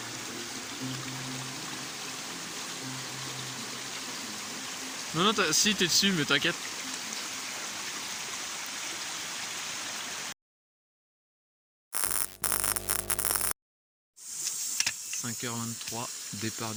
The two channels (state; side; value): identical; both; correlation 1.00